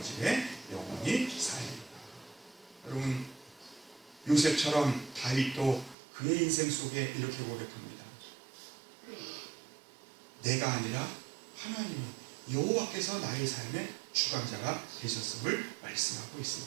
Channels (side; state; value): left; drops out; at 6.0 s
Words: 집에 영원히 살리라. 여러분 요셉처럼 다윗도 그의 인생 속에 이렇게 고백합니다. 내가 아니라 하나님이 여호와께서 나의 삶의 주관자가 되셨음을 말씀하고